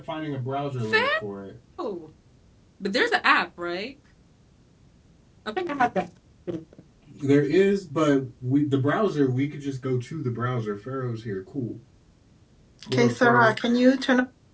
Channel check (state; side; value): identical; both; correlation 1.00